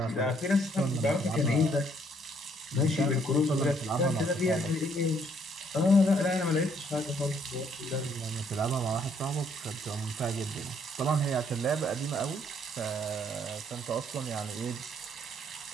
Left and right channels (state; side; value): normal; both; correlation 0.67